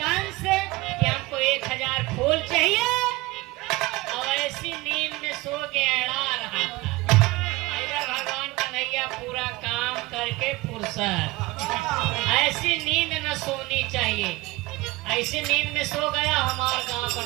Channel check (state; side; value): quieter; left; 20.8 dB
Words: कंस कि हमको 1000 फूल चाहिए, और ऐसी नींद में सो के अड़ा रहा था। इधर भगवान कन्हैया पूरा काम करके फुर्सत, ऐसी नींद न सोनी चाहिए, ऐसी नींद में सो गया। हमारे गांव का